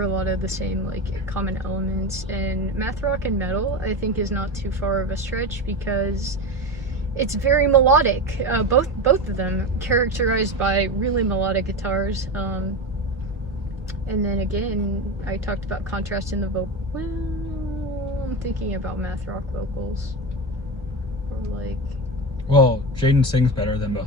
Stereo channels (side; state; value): both; normal; correlation 0.20